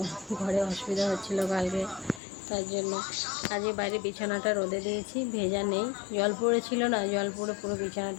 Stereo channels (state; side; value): drops out; right; at 2.2 s